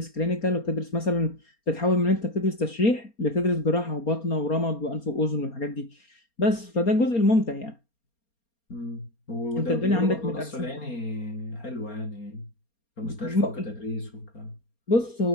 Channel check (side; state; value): right; late; 4.3 ms